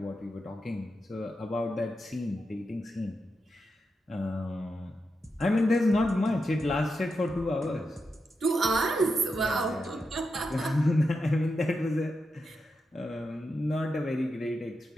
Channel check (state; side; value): normal; both; correlation 0.87